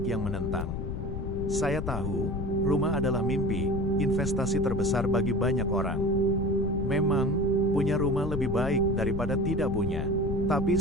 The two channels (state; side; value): noise; left; rumble, 3 dB below the sound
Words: yang menentang. Saya tahu, rumah adalah mimpi, investasi terbesar bagi banyak orang. Memang, punya rumah lebih baik daripada tidak punya. Tapi